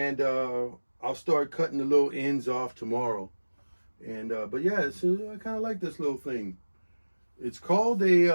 I'll start cutting the little ends off tomorrow. And but yeah, I kind of like this little thing. It's called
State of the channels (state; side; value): inverted; both; correlation -1.00